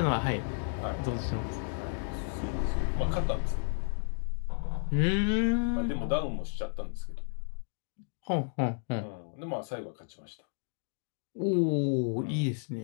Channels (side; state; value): right; silent; digital silence